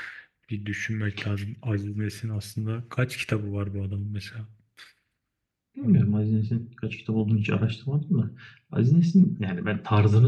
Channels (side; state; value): both; identical; correlation 1.00